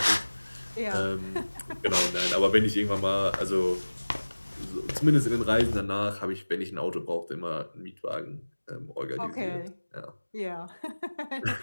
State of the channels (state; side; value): inverted; both; correlation -1.00